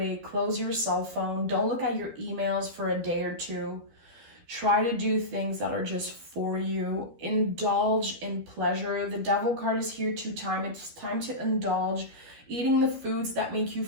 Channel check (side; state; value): left; late; 12 ms